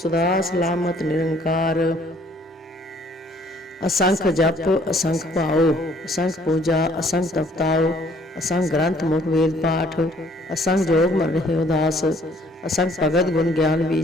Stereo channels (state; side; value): normal; both; correlation 0.61